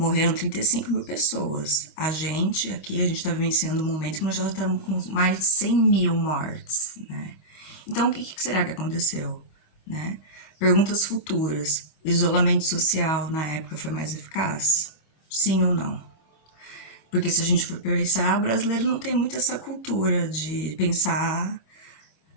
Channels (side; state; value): right; late; 25 ms